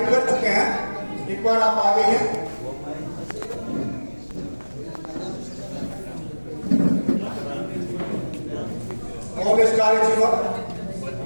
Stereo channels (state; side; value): inverted; both; correlation -1.00